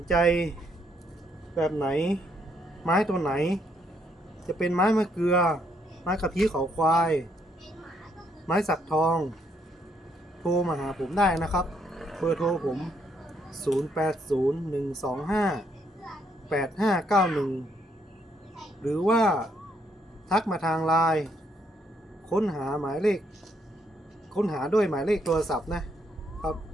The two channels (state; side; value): normal; both; correlation 0.73